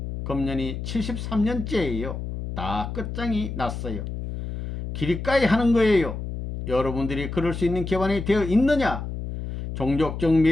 금년이 73년째예요. 다 끝장이 났어요. 기리까이 하는 거예요. 여러분들이 그럴 수 있는 기반이 되어 있느냐? 종족적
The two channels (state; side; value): noise; left; hum, 6 dB below the sound